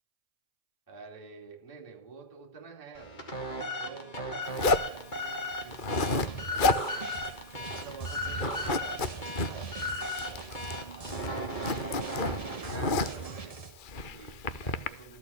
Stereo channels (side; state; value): right; late; 2.3 ms